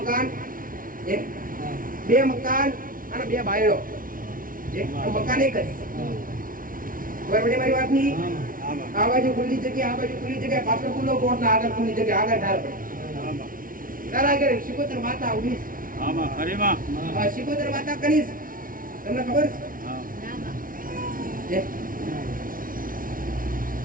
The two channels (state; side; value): late; left; 0.40 ms